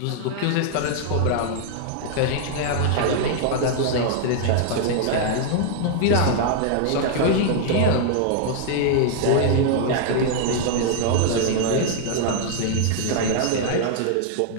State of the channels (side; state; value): both; different; correlation 0.00